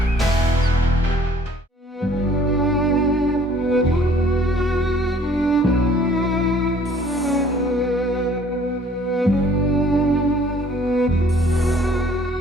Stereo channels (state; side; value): normal; both; correlation 0.57